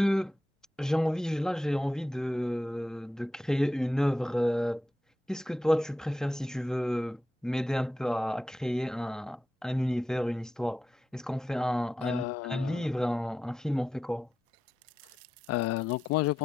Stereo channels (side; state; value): both; normal; correlation 0.89